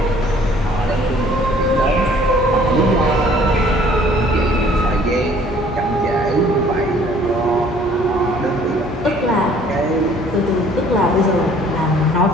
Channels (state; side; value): normal; both; correlation 0.56